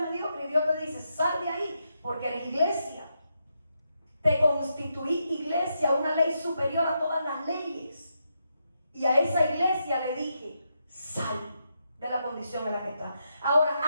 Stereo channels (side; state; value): both; inverted; correlation -0.83